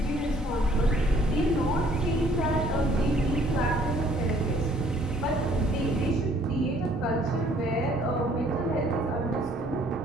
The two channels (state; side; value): normal; both; correlation 0.60